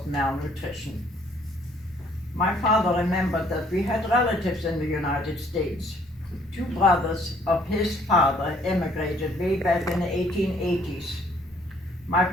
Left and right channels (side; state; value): both; normal; correlation 0.62